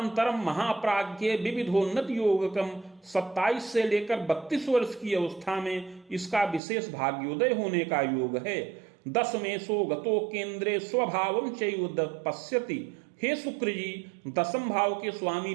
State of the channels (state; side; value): drops out; left; at 6.6 s